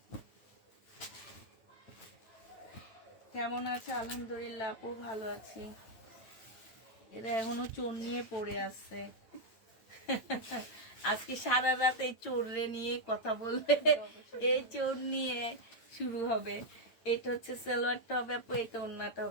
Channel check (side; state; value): right; late; 8.8 ms